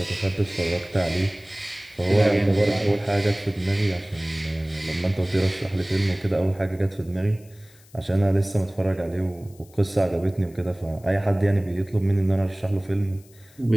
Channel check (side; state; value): left; noise; hiss, 27 dB below the sound